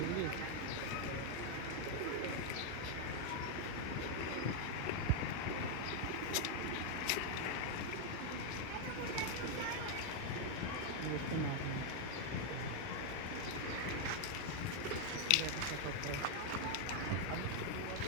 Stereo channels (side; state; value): both; different; correlation 0.00